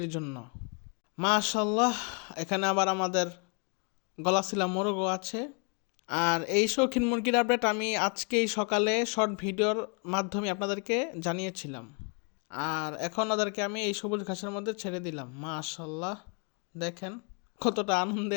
জন্য। মাশাল্লাহ, এখানে আবার আমাদের গলাশিলা মোরগও আছে। আর এই শৌখিন মুরগির আপডেট আমি আজকেই সকালে শর্ট ভিডিওর মাধ্যমে আপনাদেরকে জানিয়েছিলাম। আর এখন ওদেরকে আমি এই সবুজ ঘাসের মধ্যে ছেড়ে দিলাম। মাশাল্লাহ, দেখেন কতটা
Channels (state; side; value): quieter; right; 36.5 dB